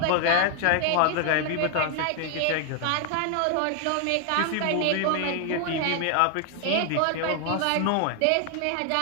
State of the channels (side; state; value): both; different; correlation 0.00